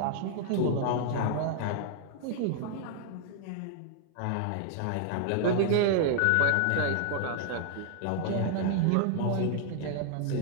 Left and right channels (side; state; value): both; different; correlation -0.01